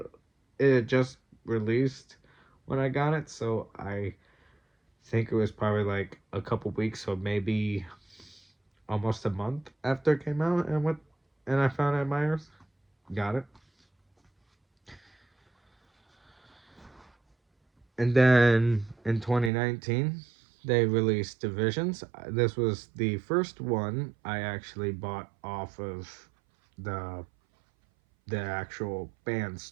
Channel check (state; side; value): drops out; left; at 19.5 s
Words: it just released when I got it, so I think it was probably like a couple weeks, or maybe almost a month after it came out, and I found it at Myers. Got it. And then in 2019, they released Divisions. This was the first one I actually bought off of the actual band